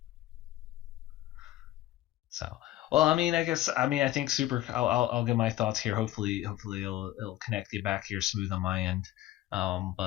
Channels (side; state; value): right; quieter; 14.7 dB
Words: So, well, I mean, I think I'll give my thoughts here. Hopefully it'll connect you back here smooth on my end.